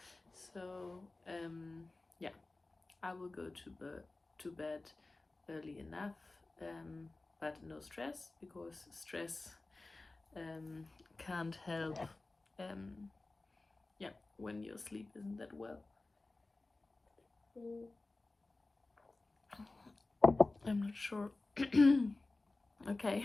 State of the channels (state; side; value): quieter; right; 3.2 dB